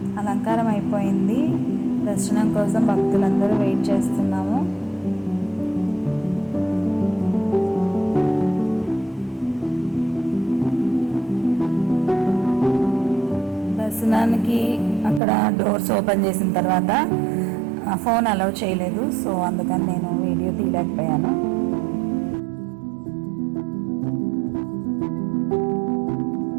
అలంకారం అయిపోయింది. దర్శనం కోసం భక్తులందరూ వెయిట్ చేస్తున్నాము. దర్శనానికి అక్కడ డోర్స్ ఓపెన్ చేసిన తర్వాత ఫోన్ అలౌ చేయలేదు. సో అందుకని నేను వీడియో తీయలేకపోయాను.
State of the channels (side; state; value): left; drops out; at 15.2 s